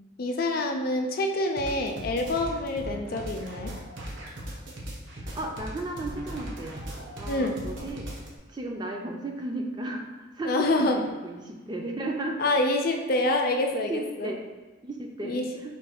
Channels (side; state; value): both; normal; correlation 0.23